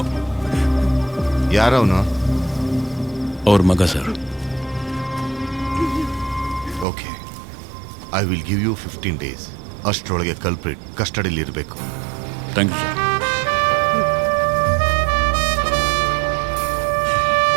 ಯಾರವನು? ಅವ್ರ ಮಗ sir. Okay, I will give you 15 days. ಅಷ್ಟರೊಳಗೆ ಕಲ್ಪ್ರಿಟ್ ಕಸ್ಟಡಿಲಿ ಇರಬೇಕು. Thank you sir.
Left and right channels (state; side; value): drops out; left; at 6.9 s